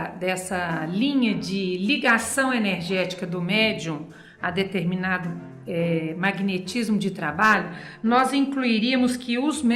linha de ligação energética do médium a determinado magnetismo de trabalho, nós incluiríamos que os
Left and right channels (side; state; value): both; identical; correlation 1.00